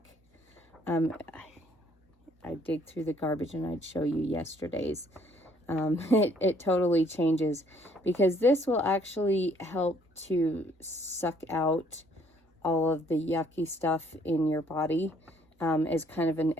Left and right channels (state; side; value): normal; both; correlation 0.63